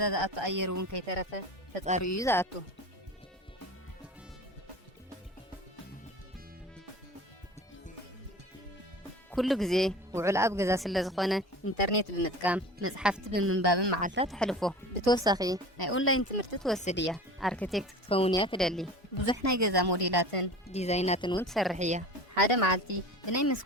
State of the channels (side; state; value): both; normal; correlation 0.37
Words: زأتو أيرون كي ترفه تتقاريو زأتو كل جزء وعلاب جزء سلزخونة إنترنت بمتكام مصحفت بمنباب معلفات حلفه بتوسخي أونلاين تمرت توسدية أركتكت تكونيا تدلي بزحنا جزء موديلاتن ديزايناتن وتسرحية حدا معلتي بناي